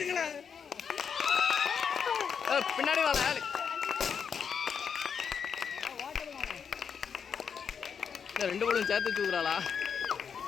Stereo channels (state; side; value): quieter; right; 6.8 dB